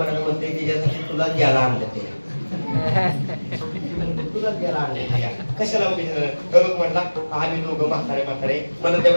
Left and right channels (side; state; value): both; inverted; correlation -1.00